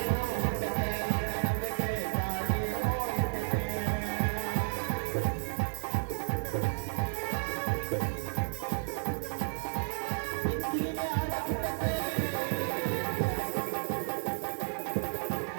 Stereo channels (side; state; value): left; silent; digital silence